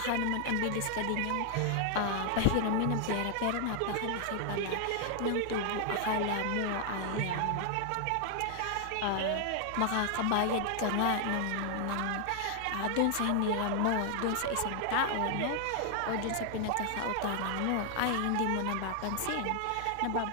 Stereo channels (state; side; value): different; both; correlation 0.00